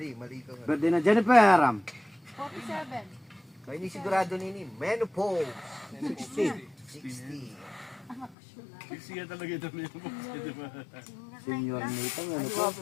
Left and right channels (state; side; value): drops out; right; at 8.3 s